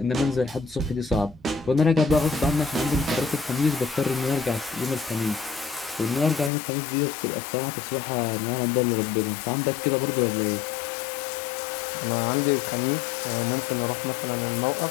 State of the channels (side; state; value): right; drops out; at 6.5 s